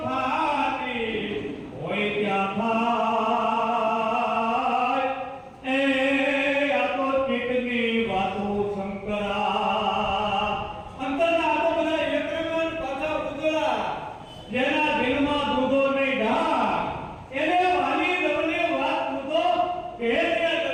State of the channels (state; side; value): identical; both; correlation 1.00